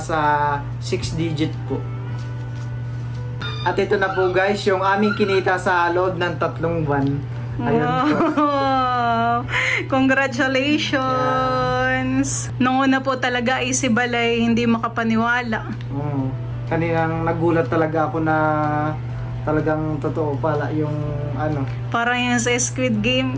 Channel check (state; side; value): identical; both; correlation 1.00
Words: 6 digit po. At ito na po guys, yung aming kinita sa loob ng 3 buwan. Ayan po. Wow! Congratulations! Yeah. Nung una po talaga ay si Balay hindi makapaniwala. Kaninang nagulat talaga ako na talagang totoo pala yung ano. Parang yung sa Squid Game.